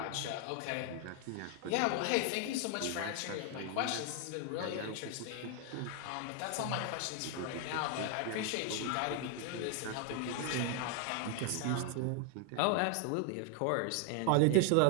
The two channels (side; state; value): both; different; correlation 0.01